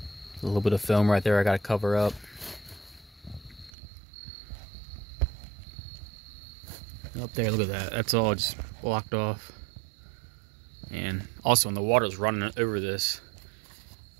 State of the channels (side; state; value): left; drops out; at 3.7 s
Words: A little bit of film right there I gotta cover up. Up there, look at that. That's all just blocked off. And also when the water's running over this,